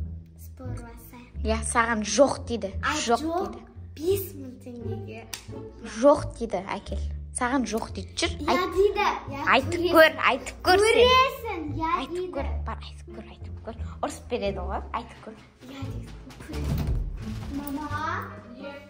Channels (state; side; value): identical; both; correlation 1.00